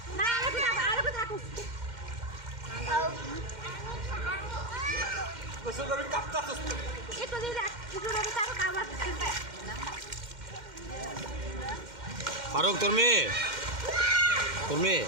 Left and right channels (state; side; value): late; left; 2.1 ms